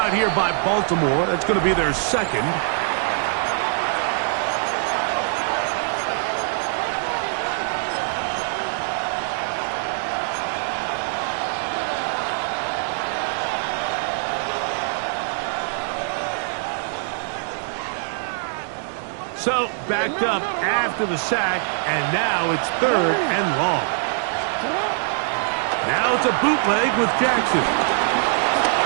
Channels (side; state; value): left; silent; digital silence